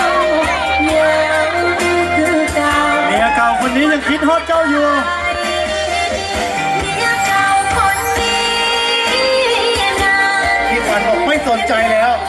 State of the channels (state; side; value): identical; both; correlation 1.00